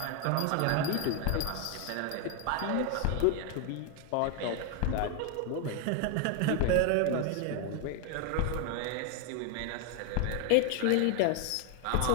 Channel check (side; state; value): both; different; correlation 0.00